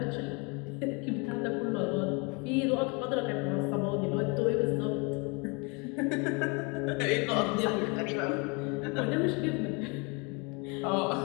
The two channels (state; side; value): quieter; right; 30.9 dB